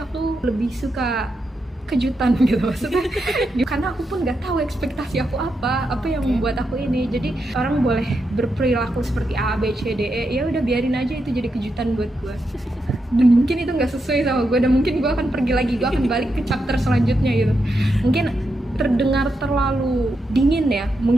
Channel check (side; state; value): both; normal; correlation 0.84